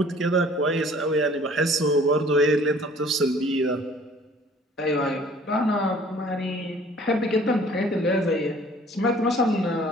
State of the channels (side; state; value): both; normal; correlation 0.53